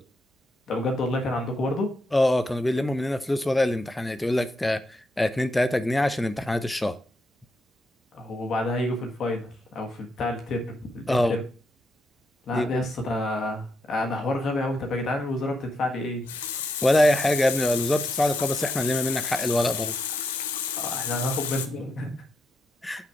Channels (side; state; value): both; normal; correlation 0.80